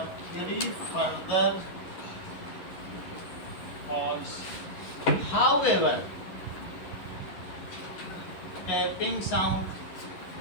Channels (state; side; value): late; right; 11 ms